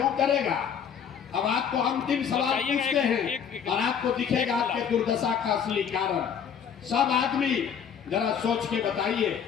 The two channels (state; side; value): quieter; right; 7.7 dB